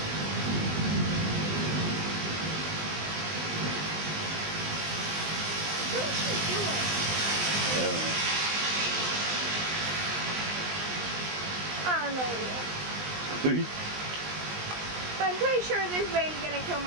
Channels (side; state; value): left; late; 20 ms